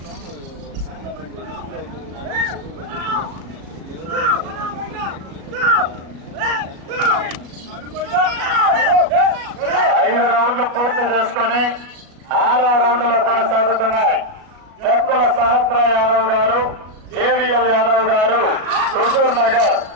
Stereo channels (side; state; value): left; late; 37 ms